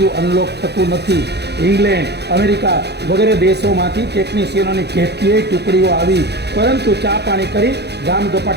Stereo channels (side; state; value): left; late; 0.48 ms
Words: અનલોક થતું નથી. ઇંગ્લેન્ડ, અમેરિકા વગેરે દેશોમાંથી ટેકનિશિયનોની કેટલીય ટુકડીઓ આવી, પરંતુ ચા પાણી કરી ગામ